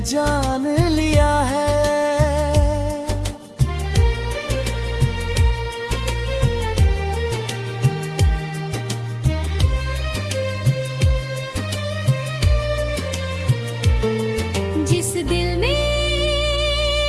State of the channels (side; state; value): both; identical; correlation 1.00